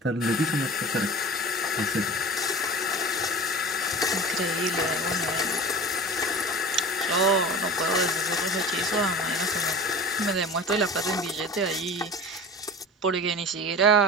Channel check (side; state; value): both; normal; correlation 0.34